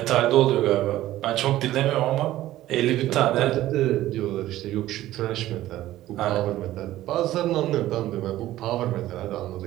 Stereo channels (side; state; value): left; quieter; 14.8 dB